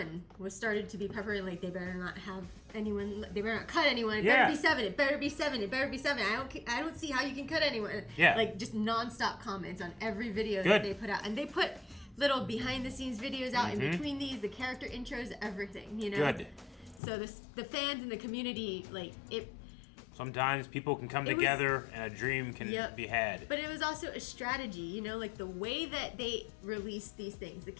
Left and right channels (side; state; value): right; drops out; at 17.0 s